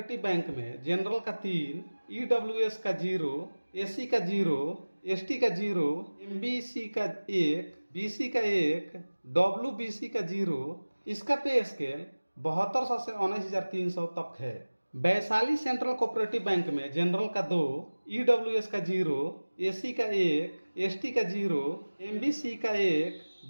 बैंक में जनरल का 3, ईडब्ल्यूएस का 0, एससी का 0, एसटी का 0, एमबीसी का 1, बीसी का 1, डब्ल्यूबीसी का 0। इसका पे स्केल 7200 से 19,300 तक है। वैशाली सेंट्रल कोऑपरेटिव बैंक में जनरल का 2, ईडब्ल्यूएस का 0, एससी का 1, एसटी का 0, एमबीसी का 1,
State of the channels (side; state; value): both; inverted; correlation -1.00